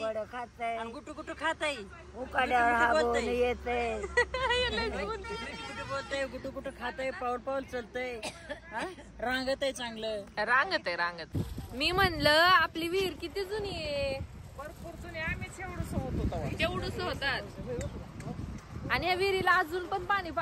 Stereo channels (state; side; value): identical; both; correlation 1.00